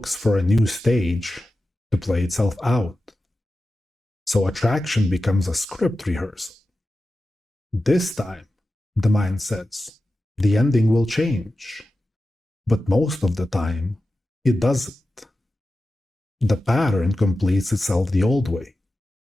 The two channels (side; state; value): both; normal; correlation 0.93